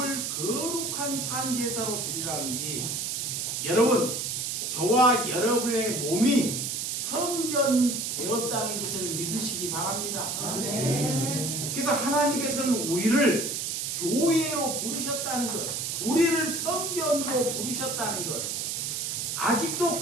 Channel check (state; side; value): noise; right; hiss, 2 dB below the sound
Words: 거룩한 산 제사로 드리라는지 여러분, 저와 여러분의 몸이 성전되었다는 것을 믿으시기 바랍니다. 아멘. 그래서 하나님께서는 우리를 교회로 부르셨다는 것, 우리를 성전으로 부르셨다는 것, 아직도